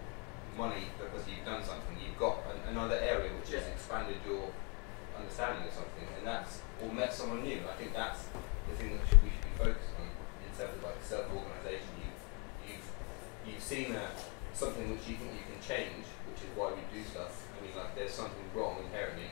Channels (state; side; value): quieter; right; 32.1 dB